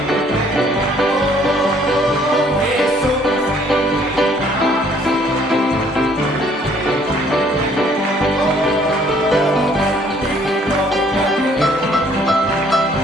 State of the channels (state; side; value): normal; both; correlation 0.61